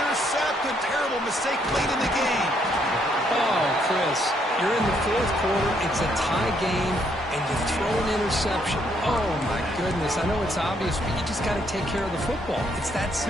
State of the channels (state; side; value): normal; both; correlation 0.71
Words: Terrible mistake late in the game. Oh, Chris, you're in the 4th quarter. It's a tie game, and you throw an interception. Oh, my goodness. I know it's obvious, but you just got to take care of the football. It's that